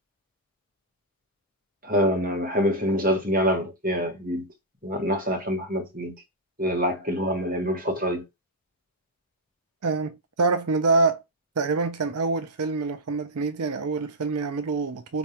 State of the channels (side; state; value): both; normal; correlation -0.05